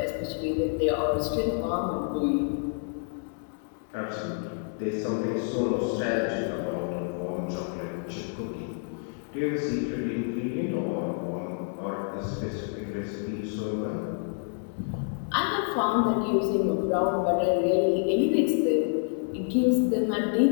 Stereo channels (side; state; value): right; silent; 59 dB below the other